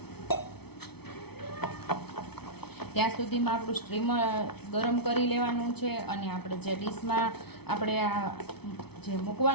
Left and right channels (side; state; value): right; late; 0.98 ms